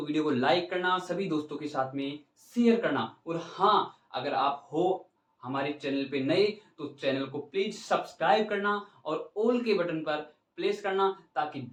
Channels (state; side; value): identical; both; correlation 1.00